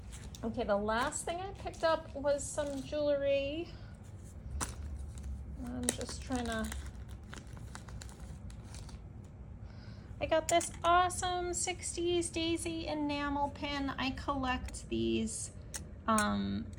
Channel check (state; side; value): identical; both; correlation 1.00